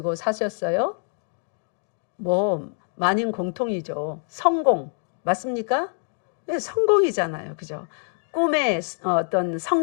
사셨어요? 뭐 만인 공통이죠. 성공 맞습니까? 네, 성공이잖아요. 그죠? 꿈의 어떤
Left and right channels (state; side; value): silent; right; digital silence